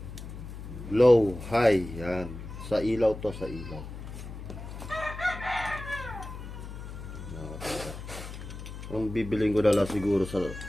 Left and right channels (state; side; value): noise; left; hum, 10 dB below the sound